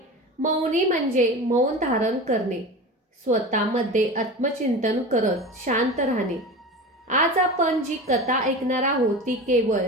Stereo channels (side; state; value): both; normal; correlation 0.30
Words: मौनी म्हणजे मौन धारण करणे, स्वतःमध्ये आत्मचिंतन करत शांत राहणे. आज आपण जी कथा ऐकणार आहोत ती केवळ